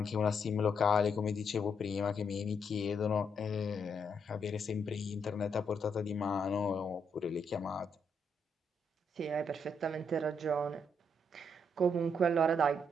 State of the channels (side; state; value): both; normal; correlation 0.76